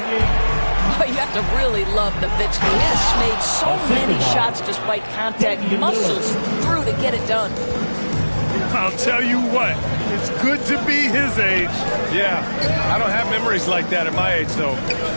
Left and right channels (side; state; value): both; inverted; correlation -1.00